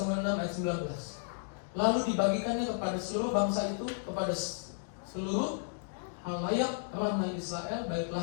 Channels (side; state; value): right; silent; digital silence